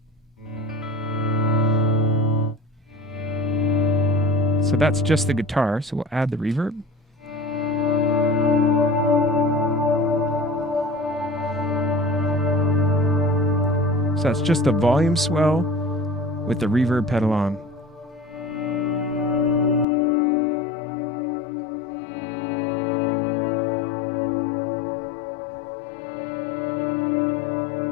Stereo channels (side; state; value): right; drops out; at 19.9 s